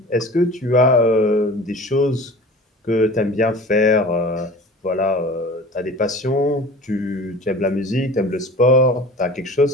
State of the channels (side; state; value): both; normal; correlation 0.40